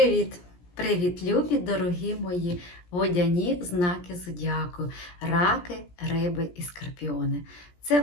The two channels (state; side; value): late; right; 17 ms